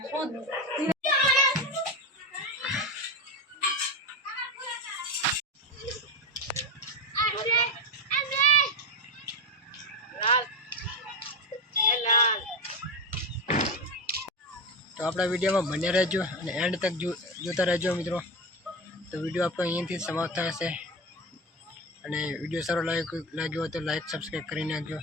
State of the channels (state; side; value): normal; both; correlation 0.17